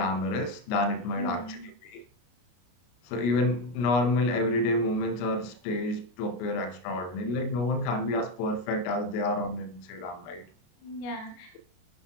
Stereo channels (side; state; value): right; late; 33 ms